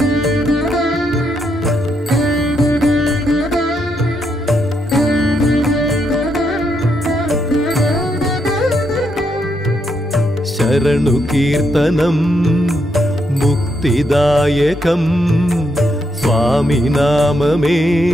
శరణు కీర్తనం ముక్తిదాయకం, స్వామి నామమే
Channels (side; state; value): both; normal; correlation 0.79